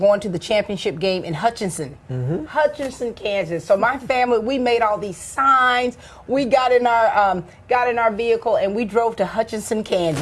to the championship game in Hutchinson, Kansas. So my family, we made all these signs. We got in our vehicle and we drove to Hutchinson,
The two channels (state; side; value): identical; both; correlation 1.00